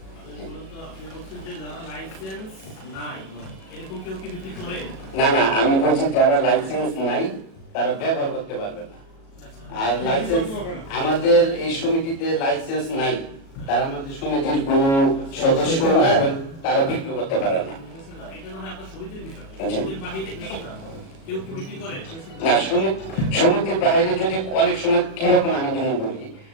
না না, আমি বলছি যারা লাইসেন্স নাই তারা ব্যবহার করতে পারবে না। আর লাইসেন্স আমাদের এই সমিতিতে লাইসেন্স নাই, তারা আমাদের সমিতির কোনো সদস্য না এবং তারা বিক্রি করতে পারে না। না, সমিতির বাইরে যদি অনেক সময় কিরকম আমি যেমন বলি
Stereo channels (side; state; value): right; late; 37 ms